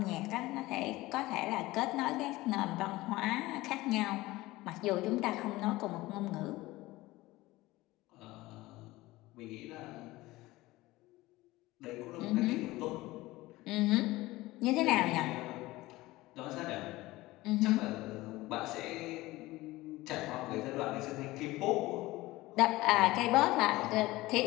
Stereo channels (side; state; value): right; quieter; 19.0 dB